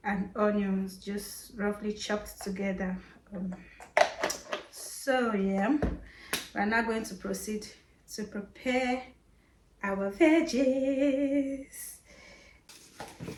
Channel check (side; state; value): both; identical; correlation 1.00